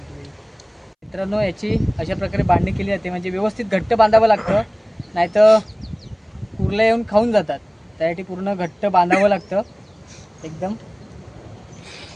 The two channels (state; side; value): identical; both; correlation 1.00